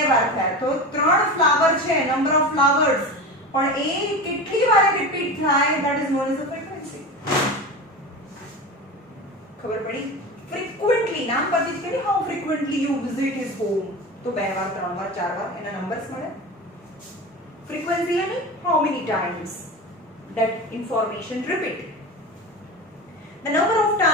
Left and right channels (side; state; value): both; normal; correlation 0.28